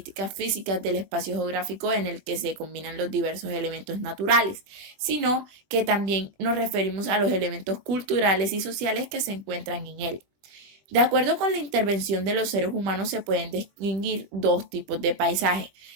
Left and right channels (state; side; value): late; left; 21 ms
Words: físicas del espacio geográfico en el que se combinan los diversos elementos naturales, sino que también nos referimos a los elementos culturales y sociales que se encuentran en él. De acuerdo con la intervención de los seres humanos se pueden distinguir dos tipos de paisaje: